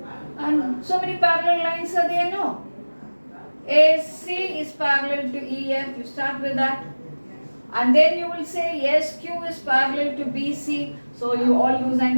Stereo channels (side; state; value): both; inverted; correlation -1.00